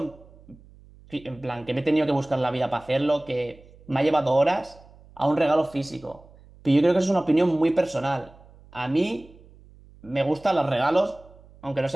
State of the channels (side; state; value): right; noise; hum, 24 dB below the sound